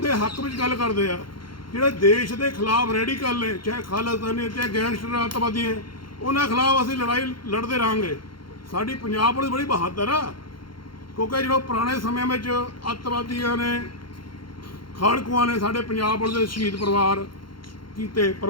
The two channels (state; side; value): late; right; 0.73 ms